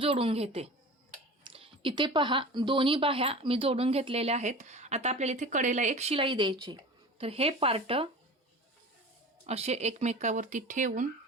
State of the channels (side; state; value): both; normal; correlation 0.36